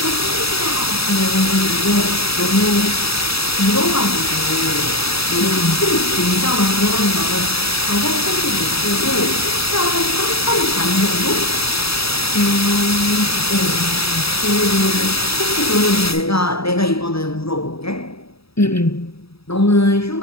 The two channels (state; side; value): late; right; 0.77 ms